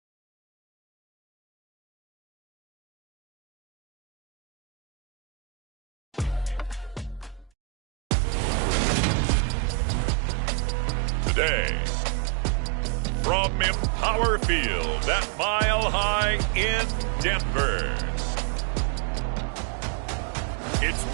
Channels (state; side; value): drops out; left; at 7.5 s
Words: Today, from Empower Field at Mile High in Denver,